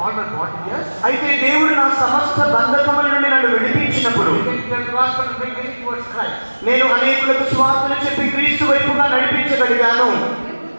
అయితే దేవుడు నా సమస్త బంధకముల నుండి నన్ను విడిపించినప్పుడు నేను అనేకులకు స్వార్థలు చెప్పి క్రీస్తు వైపుగా నడిపించగలిగాను.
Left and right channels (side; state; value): both; inverted; correlation -1.00